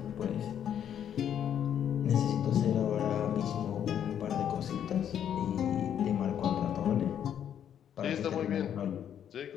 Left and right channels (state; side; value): quieter; right; 9.4 dB